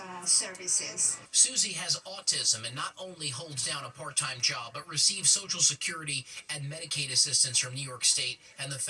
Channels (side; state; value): both; identical; correlation 1.00